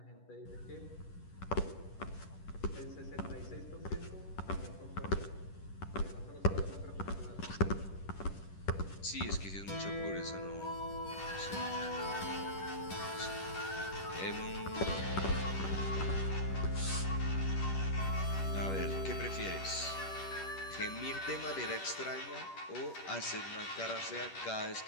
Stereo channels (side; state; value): right; late; 10 ms